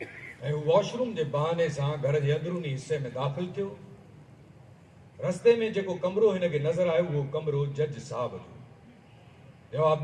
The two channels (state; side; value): identical; both; correlation 1.00